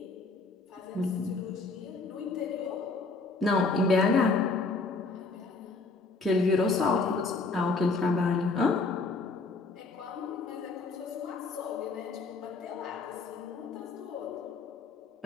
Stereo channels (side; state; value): right; quieter; 3.9 dB